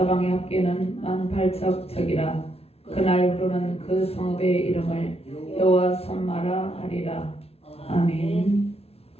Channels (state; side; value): late; right; 0.30 ms